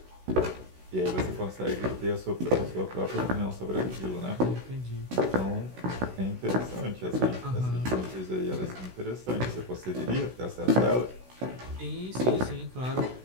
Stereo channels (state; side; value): late; left; 16 ms